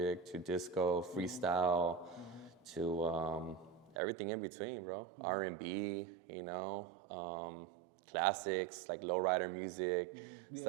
to disco, freestyle. To everything in between, bro. R&B, you know, classics like lowrider music,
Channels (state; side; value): drops out; left; at 4.0 s